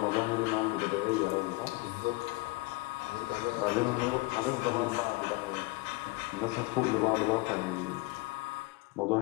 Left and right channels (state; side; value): quieter; right; 22.9 dB